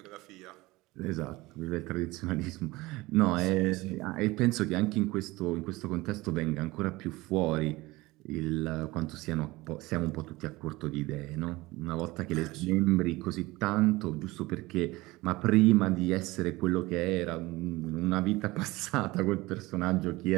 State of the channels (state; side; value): quieter; left; 20.7 dB